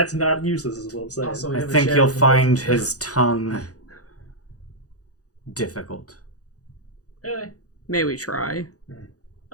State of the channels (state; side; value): late; right; 0.67 ms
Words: not useless, is what I'm saying. Also, we I have a think shared you'll find relationship. his tongue difficult. Really? May we try?